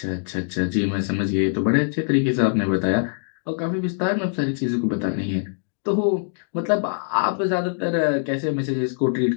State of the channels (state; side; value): silent; right; digital silence